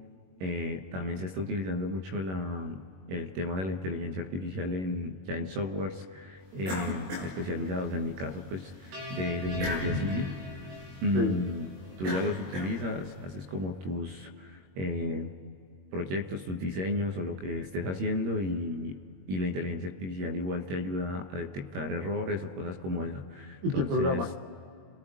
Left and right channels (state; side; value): late; left; 21 ms